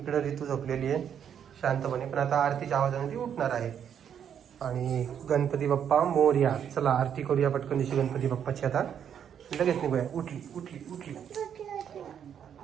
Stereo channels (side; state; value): left; quieter; 8.6 dB